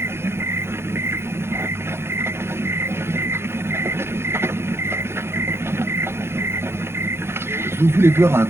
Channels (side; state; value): left; late; 0.12 ms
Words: Vous voulez voir un